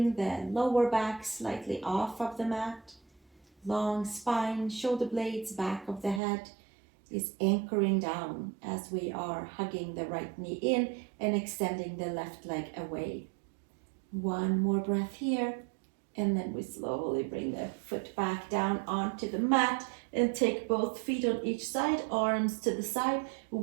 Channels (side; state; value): left; drops out; at 6.2 s